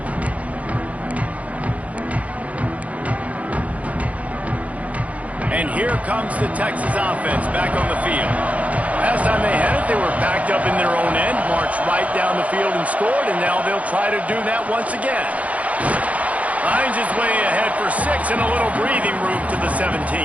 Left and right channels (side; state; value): left; late; 0.068 ms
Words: And here comes the Texas offense back on the field. Last time they had it, they were backed up in their own end, marched right down the field and scored, and now they'll try to do that once again. Finds his way ahead for 6 and a little breathing room to the 17.